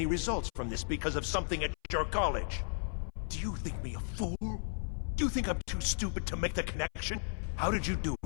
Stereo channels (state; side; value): silent; right; 55 dB below the other